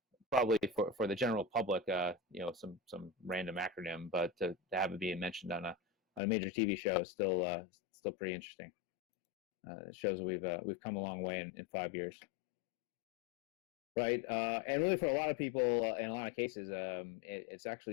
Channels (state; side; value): drops out; right; at 6.2 s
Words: probably for the general public some random acronym, but to have it being mentioned on a major TV show is still pretty interesting. It shows that we've come a long way in 5 years. Right, and really for a lot of people, in a lot of cases, it's